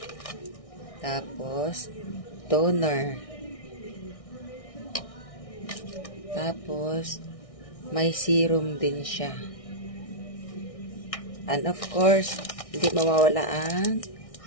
Tapos, toner. Tapos, may serum din siya. And of course, hindi mawawala ang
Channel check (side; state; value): right; late; 1.6 ms